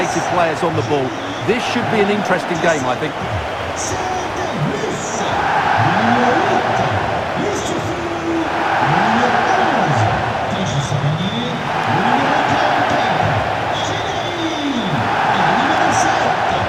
players on the ball. This should be an interesting game, I think.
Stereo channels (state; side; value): identical; both; correlation 1.00